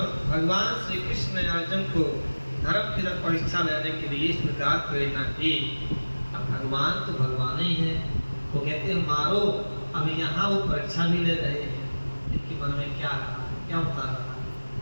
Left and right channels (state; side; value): inverted; both; correlation -1.00